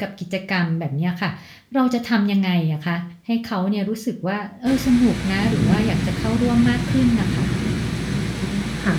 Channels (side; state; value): both; identical; correlation 1.00